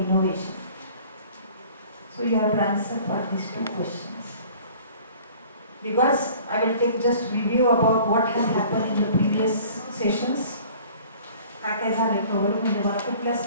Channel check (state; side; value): inverted; both; correlation -0.49